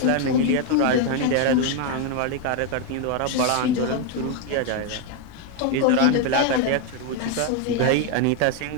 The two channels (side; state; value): both; different; correlation 0.01